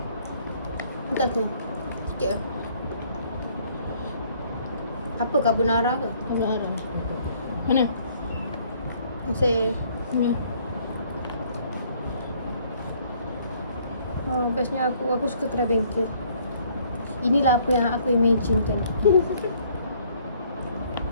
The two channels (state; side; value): inverted; both; correlation -0.62